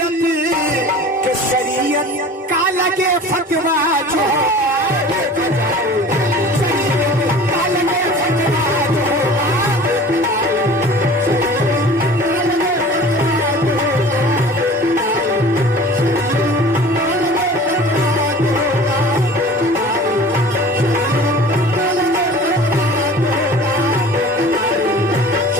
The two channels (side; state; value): both; normal; correlation 0.42